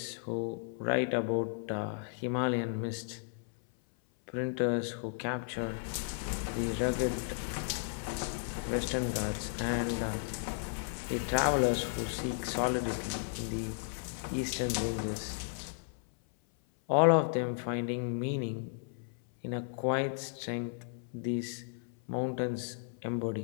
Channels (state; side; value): silent; right; 55 dB below the other